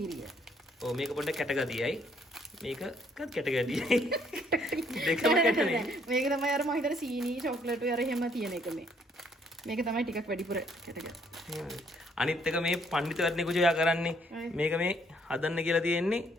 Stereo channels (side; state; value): both; normal; correlation 0.67